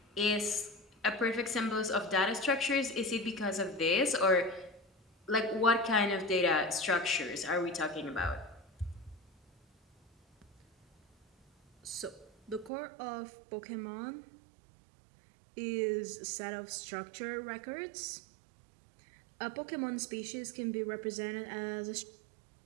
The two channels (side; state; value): left; drops out; at 12.7 s